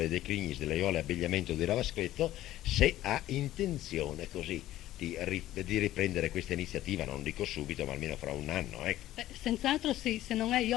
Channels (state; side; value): quieter; right; 14.4 dB